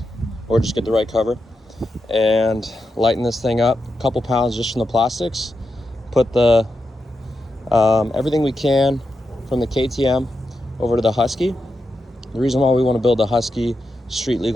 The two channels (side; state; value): both; normal; correlation 0.87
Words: or just get the right cover, and lighten this thing up. A couple pounds just from the plastics. Put the everything we can from the KTM over to the Husky. The reason why we want to build the Husky street